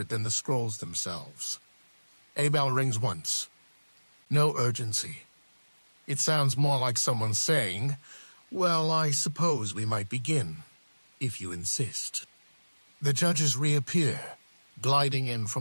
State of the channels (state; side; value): inverted; both; correlation -1.00